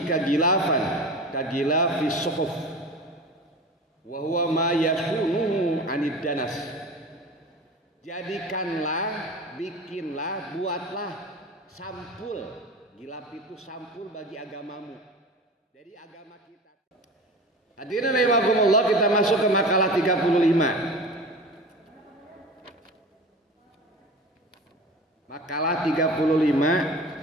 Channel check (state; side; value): normal; both; correlation 0.34